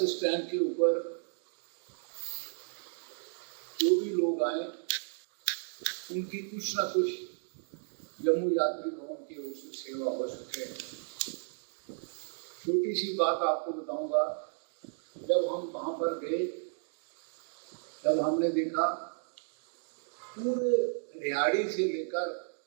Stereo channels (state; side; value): silent; left; digital silence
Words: स्टैंड के ऊपर जो भी लोग आए उनकी कुछ ना कुछ जम्मू यात्री भवन की ओर से सेवा हो सके। छोटी सी बात आपको बताऊंगा, जब हम वहाँ पर गए तब हमने देखा पूरे रिहाड़ी से लेकर